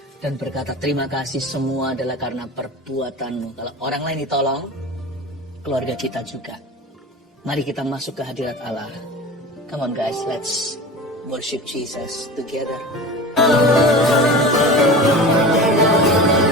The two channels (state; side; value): normal; both; correlation 0.34